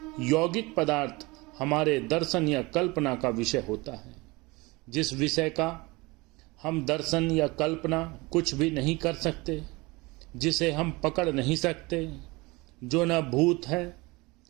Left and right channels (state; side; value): quieter; left; 24.0 dB